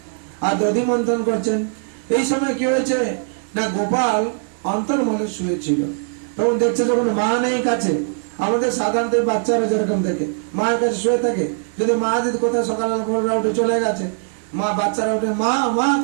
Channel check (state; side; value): silent; left; 65 dB below the other